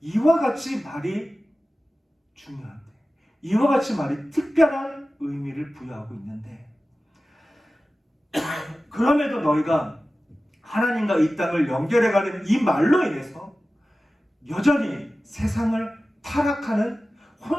같이 말이 중요한데, 이와 같이 말이 특별한 의미를 부여하고 있는데, 그럼에도 너희가 하나님과 이 땅을 연결해가는 이 말로 인해서 여전히 세상을 타락하는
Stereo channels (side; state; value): both; normal; correlation 0.96